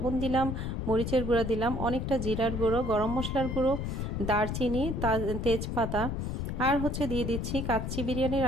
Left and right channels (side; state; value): left; noise; rumble, 3 dB below the sound